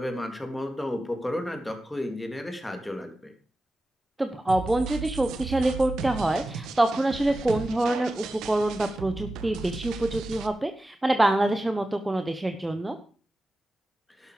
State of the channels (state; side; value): normal; both; correlation 0.93